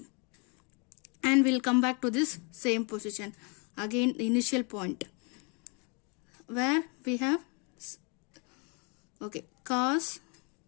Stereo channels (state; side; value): quieter; right; 33.8 dB